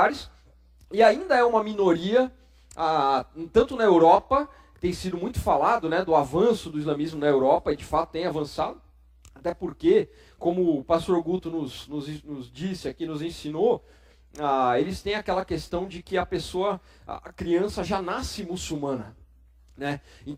E ainda é uma minoria, tanto na Europa, que tem sido muito falado, né, do avanço do islamismo na Europa, e de fato tem avançado. Até porque, como o pastor Guto nos disse aqui, nos ensinou, eles têm aquela questão de que a criança já nasce muçulmana. Né?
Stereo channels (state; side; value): identical; both; correlation 1.00